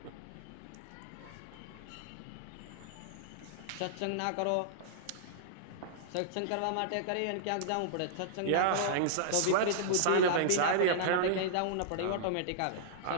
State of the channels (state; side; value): different; both; correlation -0.02